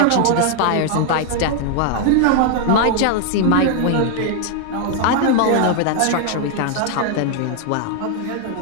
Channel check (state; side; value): different; both; correlation 0.00